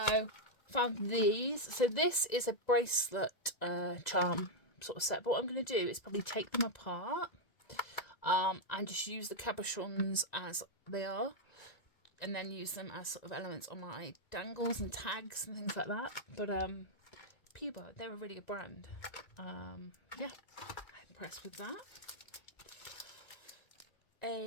found these. So this is a bracelet charm sort of set. But what I'm going to do is probably take them apart and just use the cabochons as they are. And then use them as sort of elements on my dangles and tags and things like that. But Puba, they're a really good brand. Yeah, I'm impressed with that.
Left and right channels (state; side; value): late; right; 1.9 ms